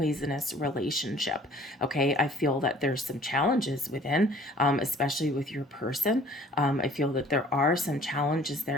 relationship, okay? I feel that there's some challenges within, especially with your person. I feel that there are some challenges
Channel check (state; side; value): normal; both; correlation 0.52